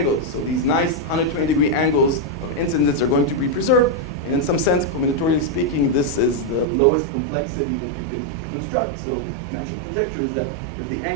So these nice 120-degree angles of incidence are going to be preserved. And in some sense, combinatorially speaking, this is the lowest complexity that you can construct. So the natural conjecture is that if the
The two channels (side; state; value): left; drops out; at 6.7 s